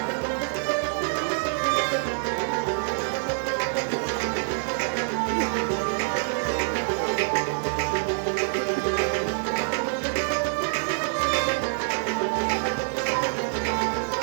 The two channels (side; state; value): left; silent; digital silence